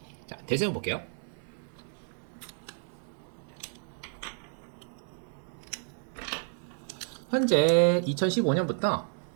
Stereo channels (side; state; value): left; silent; digital silence